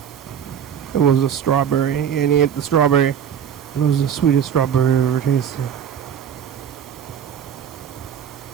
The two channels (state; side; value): quieter; left; 8.5 dB